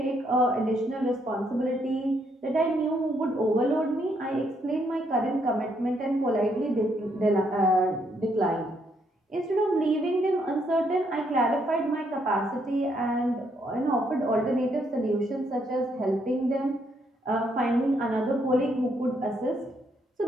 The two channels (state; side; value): normal; both; correlation 0.73